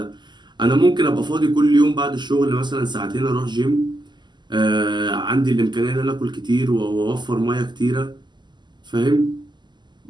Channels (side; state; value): left; late; 0.21 ms